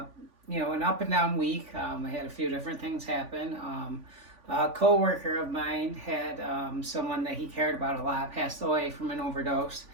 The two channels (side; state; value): left; late; 3.5 ms